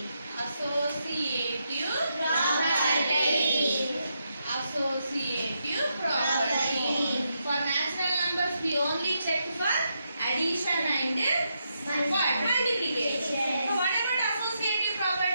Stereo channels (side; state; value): both; inverted; correlation -0.82